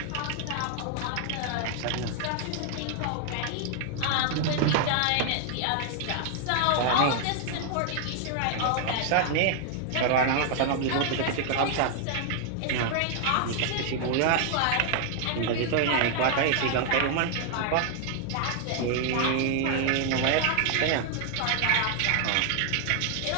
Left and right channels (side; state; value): both; different; correlation 0.00